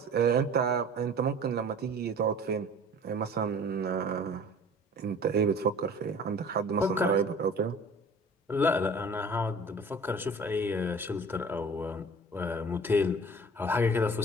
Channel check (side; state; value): both; normal; correlation 0.45